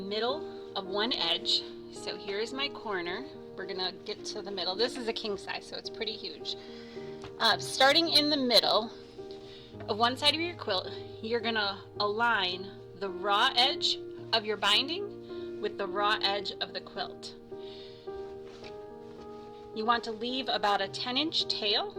of one edge, so here's my corner. We're gonna get to the middle. This is a king size, so it's pretty huge. Starting in the middle of one side of your quilt, you're gonna align the raw edge of your binding with the raw edge of the quilt. You want to leave about a 10-inch tail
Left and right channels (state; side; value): identical; both; correlation 1.00